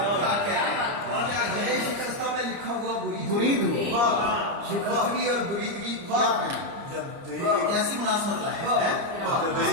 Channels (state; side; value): late; left; 30 ms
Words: شکستہ میں لکھا ہوا برید ہوا. شکستگی اور بریدگی کیسی مناسبت لائے. جب